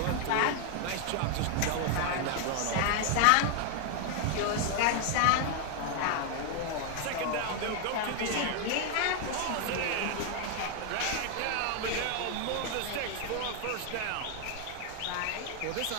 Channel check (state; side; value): different; both; correlation 0.00